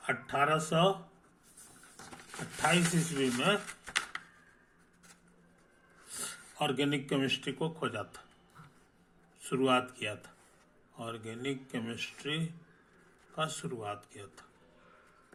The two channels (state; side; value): identical; both; correlation 1.00